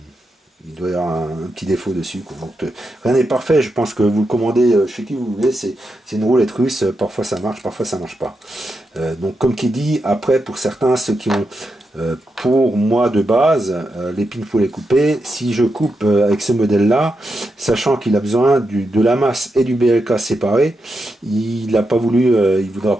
il doit y avoir un petit défaut dessus. Quoi. Donc, rien n'est parfait. Je pense que vous le commandez chez qui vous voulez. C'est une roulette russe. Parfois ça marche, parfois ça marche pas. Donc, comme qui dit, après, pour certains, ceux qui ont... pour moi de base, les pins faut les couper. Si je coupe avec ce modèle là, sachant qu'il a besoin de la masse et du BLK séparés, il n'a pas voulu, il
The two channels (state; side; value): normal; both; correlation 0.86